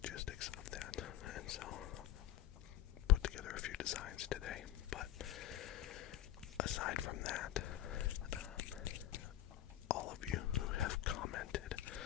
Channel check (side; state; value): right; quieter; 12.9 dB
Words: of that. And so put together a few designs today. But aside from that, all of you who have commented